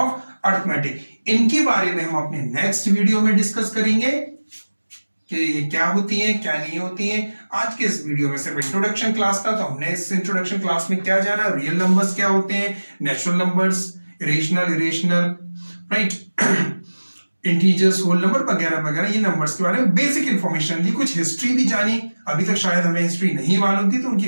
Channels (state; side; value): inverted; both; correlation -1.00